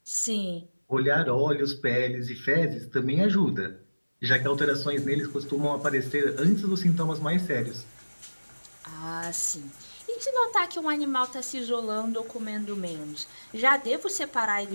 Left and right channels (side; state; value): both; inverted; correlation -1.00